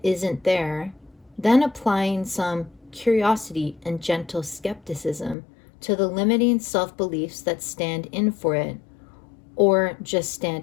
isn't there, then applying some curiosity and gentle skepticism to the limiting self-beliefs that stand in for it or just stand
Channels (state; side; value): drops out; right; at 5.4 s